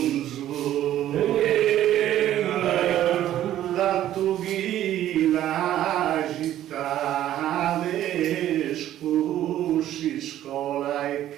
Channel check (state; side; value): quieter; left; 12.5 dB